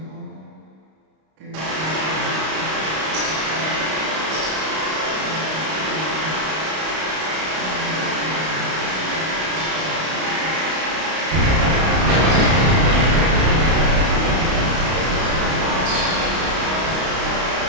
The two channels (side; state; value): left; late; 32 ms